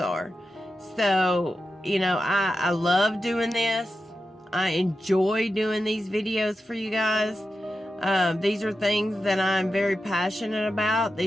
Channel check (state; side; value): normal; both; correlation 0.90